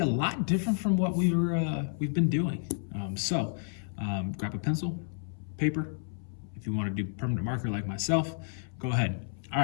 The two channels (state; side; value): silent; right; 57 dB below the other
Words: a lot different from what we've been doing. Grab a pencil, paper. If you want to do permanent marker like myself, go ahead. All